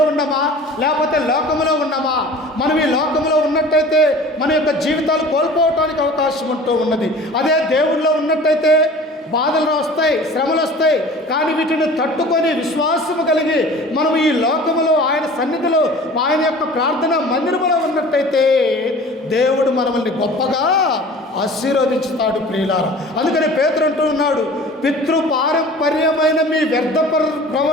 ఉన్నామా లేకపోతే లోకంలో ఉన్నామా? మనం ఈ లోకంలో ఉన్నట్టయితే మన యొక్క జీవితాలు కోల్పోవటానికి అవకాశం ఉంటూ ఉన్నది. అదే దేవుడిలో ఉన్నట్టయితే బాధలు వస్తాయి, శ్రమలు వస్తాయి, కానీ వీటిని తట్టుకొని విశ్వాసము కలిగి మనం ఈ లోకములో ఆయన సన్నిధిలో ఆయన యొక్క ప్రార్థన మందిరములో ఉన్నట్టయితే దేవుడు మనల్ని గొప్పగా ఆశీర్వదించుతాడు ప్రియులారా. అందుకని పేతురు అంటూ ఉన్నాడు, పితృపారంపర్యమైన మీ వ్యర్థ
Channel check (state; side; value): normal; both; correlation 0.43